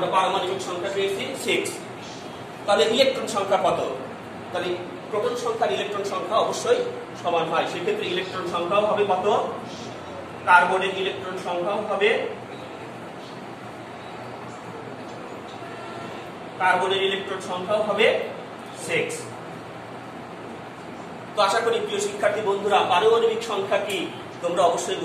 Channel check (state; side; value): identical; both; correlation 1.00